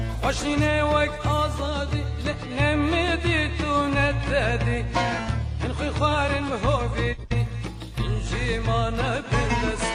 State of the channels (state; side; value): identical; both; correlation 1.00